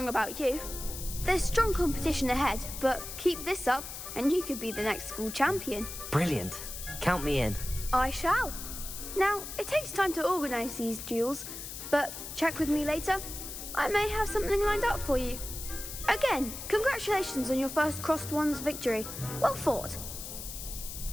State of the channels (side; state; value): left; noise; hiss, 9 dB below the sound